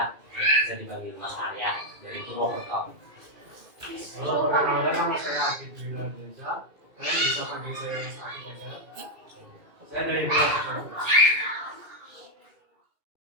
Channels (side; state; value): left; late; 2.4 ms